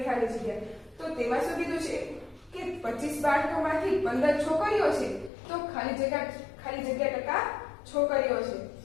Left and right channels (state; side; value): drops out; right; at 5.3 s